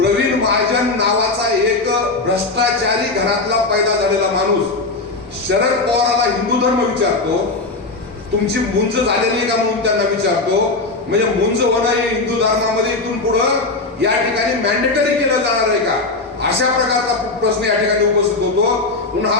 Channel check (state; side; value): quieter; right; 3.5 dB